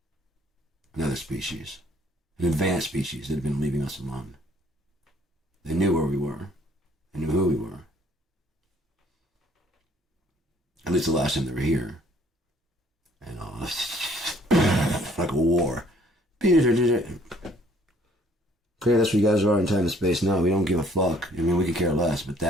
another species, an advanced species that had been leaving us alone. They knew where we were. They knew who we were. At least the last time they were here. And like a war. Okay, that's what you guys are in time and space now. We don't give a fuck. I mean, we could care less, but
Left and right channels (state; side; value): normal; both; correlation 0.60